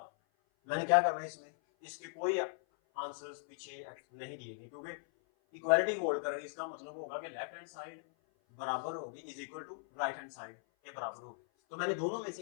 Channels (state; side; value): silent; right; 52 dB below the other